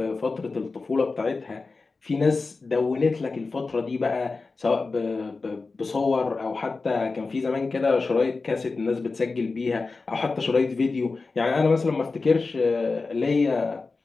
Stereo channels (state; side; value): quieter; right; 4.0 dB